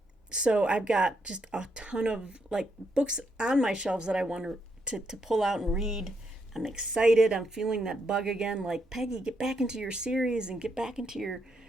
So I've got just a ton of books on my shelves that I want to pull out and read. I'm excited. I'm feeling that bug again. Like, Peggy, get back into your series and get back into your,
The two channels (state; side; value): normal; both; correlation 0.78